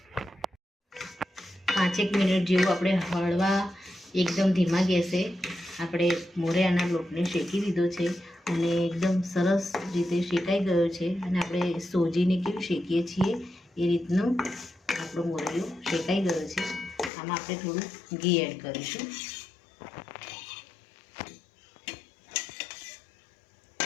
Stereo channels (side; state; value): right; drops out; at 17.1 s